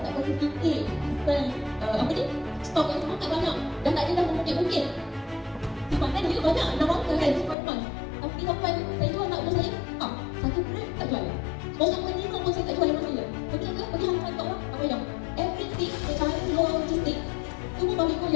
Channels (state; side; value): drops out; right; at 7.6 s